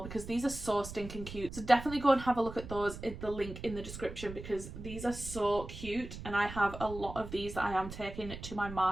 because these are so stinking cute. So definitely go and have a look at those in the link in the description, because these are so cute and I have a lot of these that I am taking to my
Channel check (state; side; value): noise; right; rumble, 11 dB below the sound